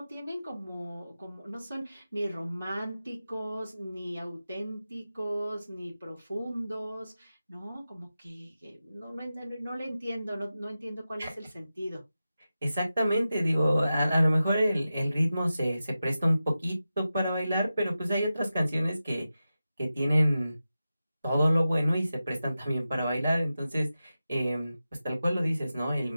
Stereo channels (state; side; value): inverted; both; correlation -0.93